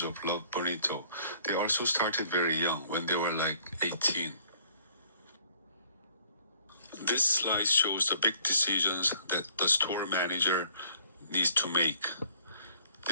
of Love Bonito. They also started very young, when they were like 18. This slide shows the big decisions that the store manager needs to make.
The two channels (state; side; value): inverted; both; correlation -0.59